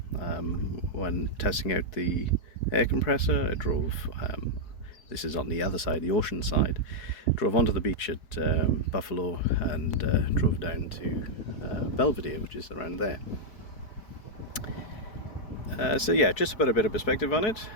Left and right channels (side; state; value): right; late; 4.6 ms